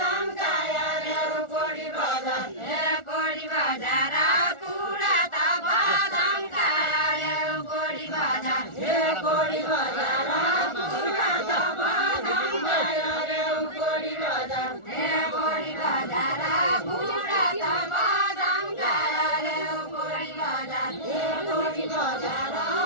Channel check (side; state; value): right; late; 1.4 ms